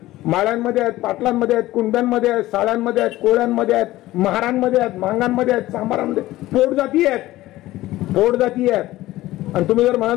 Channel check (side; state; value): right; quieter; 16.6 dB